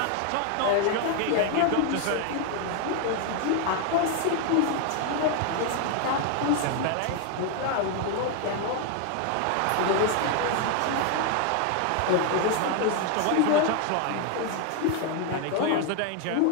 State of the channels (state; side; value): different; both; correlation 0.01